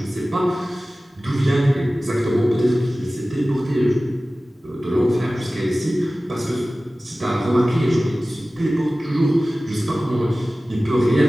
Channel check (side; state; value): both; normal; correlation 0.97